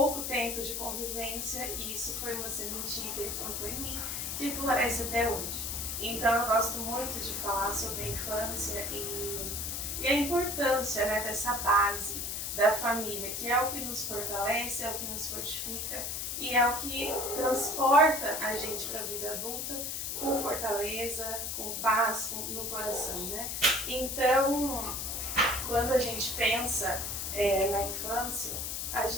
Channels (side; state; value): left; noise; hiss, 3 dB below the sound